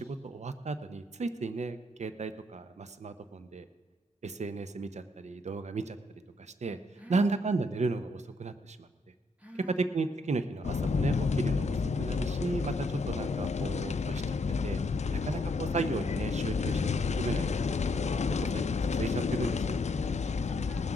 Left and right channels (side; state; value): both; normal; correlation 0.74